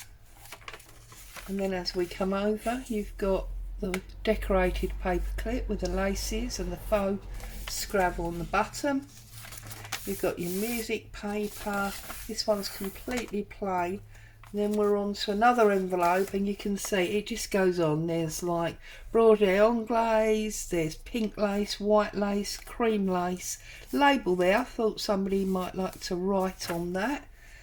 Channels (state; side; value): identical; both; correlation 1.00